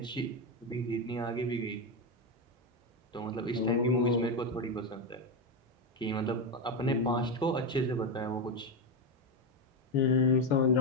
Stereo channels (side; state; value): both; normal; correlation 0.10